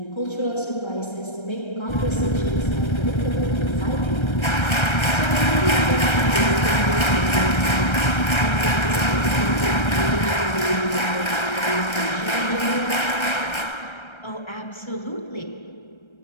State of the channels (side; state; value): right; late; 1.3 ms